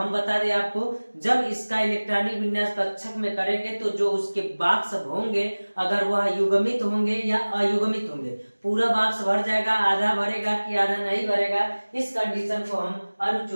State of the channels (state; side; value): inverted; both; correlation -1.00